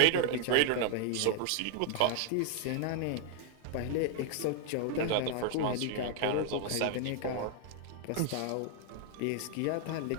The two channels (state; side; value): different; both; correlation 0.00